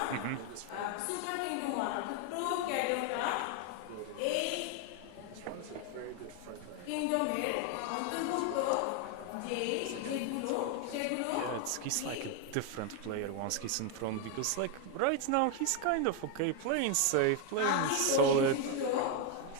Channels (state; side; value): different; both; correlation 0.01